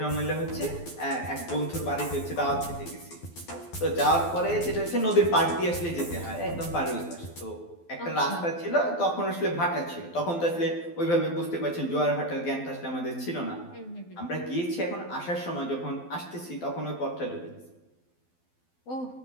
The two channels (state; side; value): late; right; 12 ms